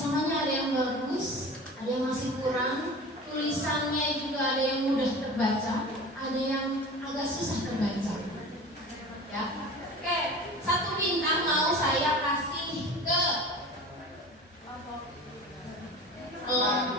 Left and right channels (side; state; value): both; normal; correlation 0.36